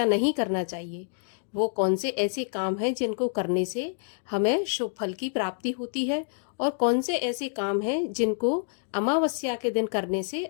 नहीं करना चाहिए। वो कौन से ऐसे काम हैं जिनको करने से हमें शुभ फल की प्राप्ति होती है और कौन से ऐसे काम हैं जिनको अमावस्या के दिन करने से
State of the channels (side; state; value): right; silent; digital silence